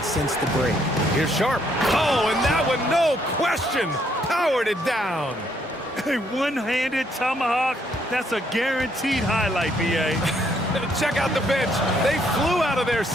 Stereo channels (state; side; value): normal; both; correlation 0.70